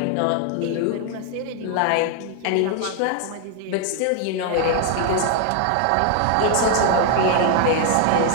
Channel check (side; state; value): both; different; correlation 0.00